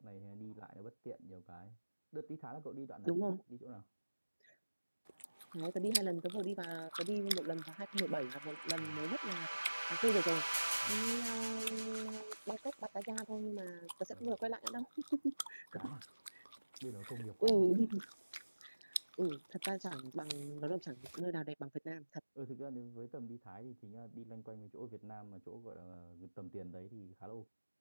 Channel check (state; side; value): inverted; both; correlation -1.00